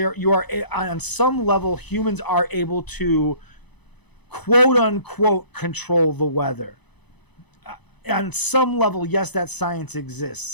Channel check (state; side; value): late; right; 0.99 ms